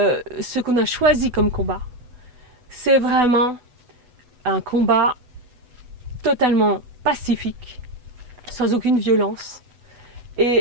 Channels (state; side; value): late; left; 8.0 ms